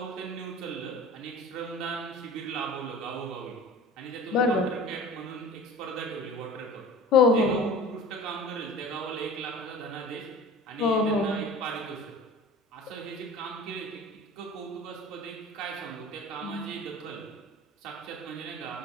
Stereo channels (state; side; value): normal; both; correlation 0.39